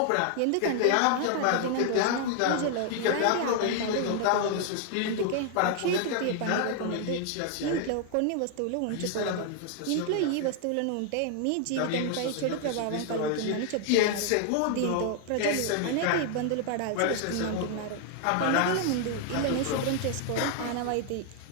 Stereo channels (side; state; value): both; different; correlation 0.00